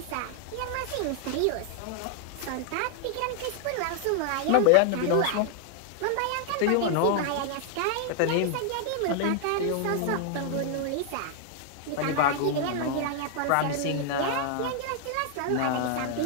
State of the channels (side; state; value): both; different; correlation 0.00